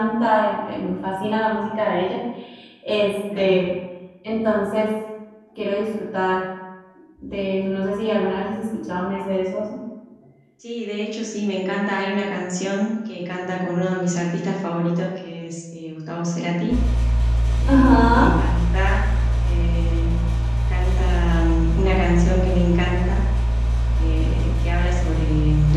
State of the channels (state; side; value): identical; both; correlation 1.00